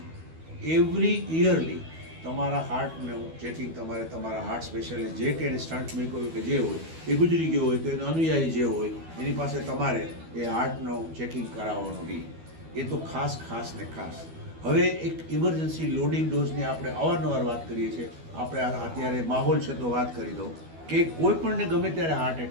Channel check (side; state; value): left; late; 12 ms